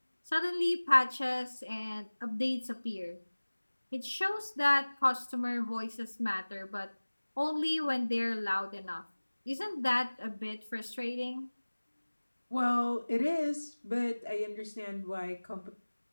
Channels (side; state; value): both; inverted; correlation -1.00